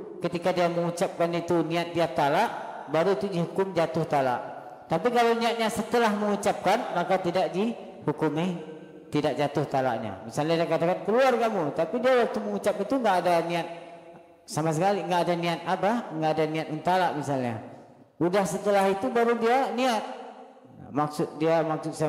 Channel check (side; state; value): both; identical; correlation 1.00